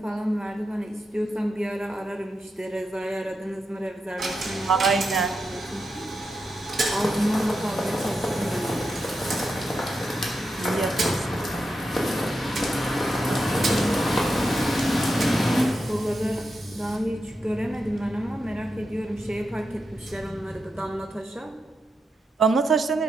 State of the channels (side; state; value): both; normal; correlation 0.87